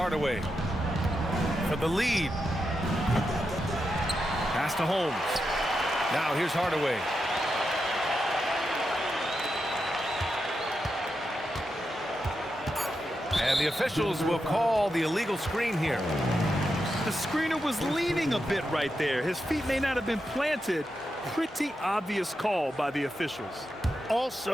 for the lead. Pass to Holmes. Now here's Hardaway. And the officials will call the illegal screen here. The screener was leaning a bit right there. His feet may not have been planted. Pretty obvious call by the officials.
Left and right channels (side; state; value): both; normal; correlation 0.87